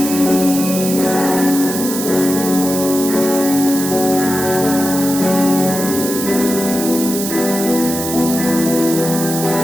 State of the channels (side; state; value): right; noise; hiss, 5 dB below the sound